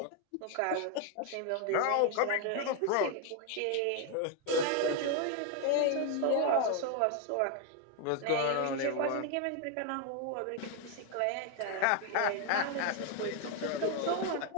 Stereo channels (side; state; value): both; different; correlation 0.01